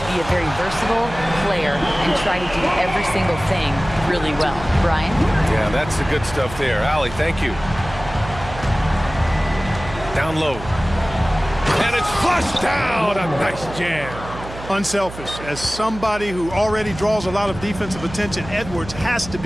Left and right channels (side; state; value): right; noise; hum, 13 dB below the sound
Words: be a very versatile player and try to do every single thing really well. Brian? Yeah, that's the good stuff there. Allie, thank you. Down low. And it's flushed down. A nice jam. Unselfish. As somebody who already draws a lot of defensive attention, Edwards has to